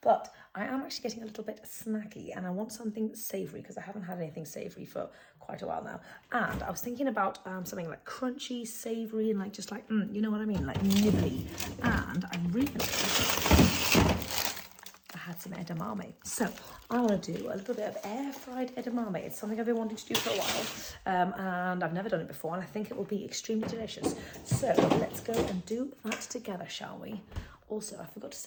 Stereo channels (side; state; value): both; identical; correlation 1.00